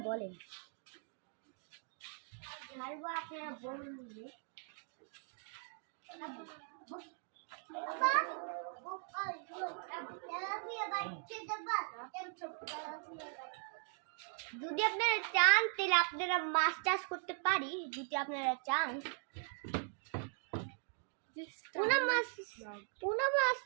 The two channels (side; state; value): left; silent; 51 dB below the other